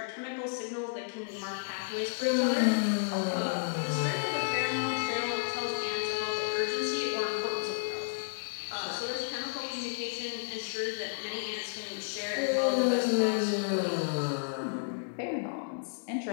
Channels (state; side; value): silent; right; digital silence